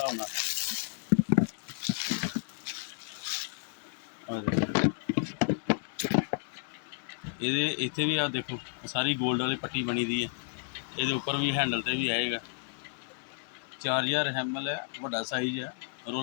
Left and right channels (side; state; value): right; silent; digital silence